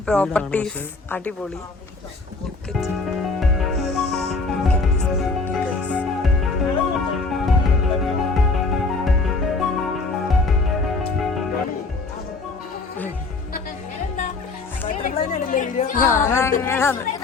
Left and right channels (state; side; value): quieter; right; 3.9 dB